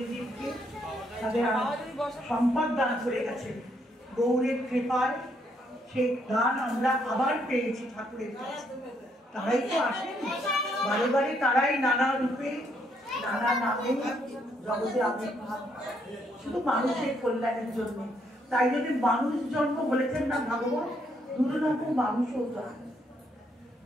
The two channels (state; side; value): normal; both; correlation 0.73